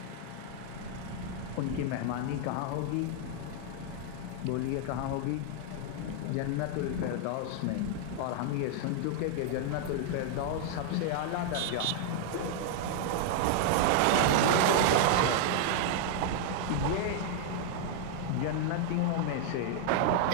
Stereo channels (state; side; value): different; both; correlation 0.00